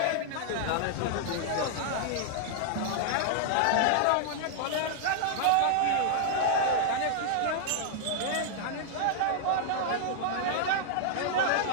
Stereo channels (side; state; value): both; different; correlation -0.01